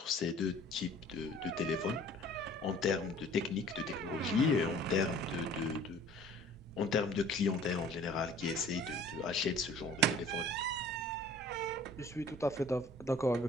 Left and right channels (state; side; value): normal; both; correlation 0.50